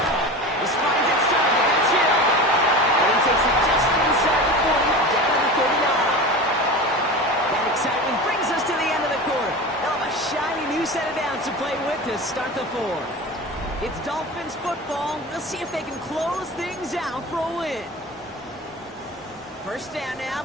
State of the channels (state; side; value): normal; both; correlation 0.31